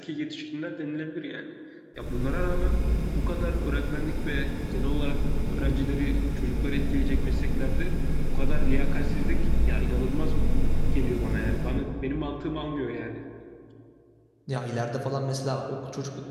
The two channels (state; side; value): identical; both; correlation 1.00